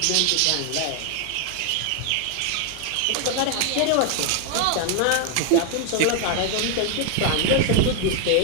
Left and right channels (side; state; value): both; different; correlation 0.01